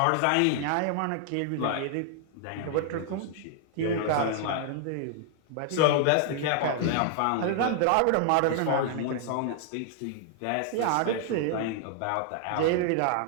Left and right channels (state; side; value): different; both; correlation 0.00